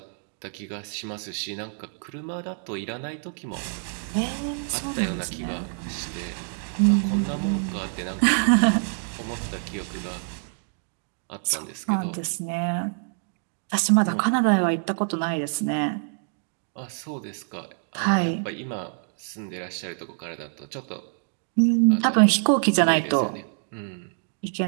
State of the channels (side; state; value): left; silent; 61 dB below the other